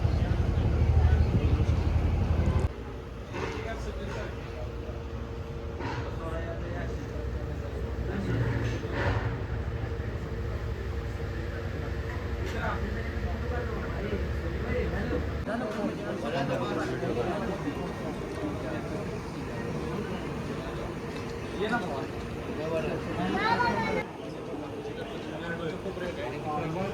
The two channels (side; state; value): both; identical; correlation 1.00